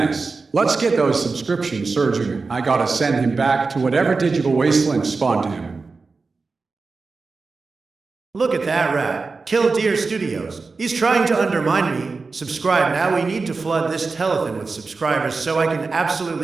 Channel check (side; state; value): left; quieter; 4.2 dB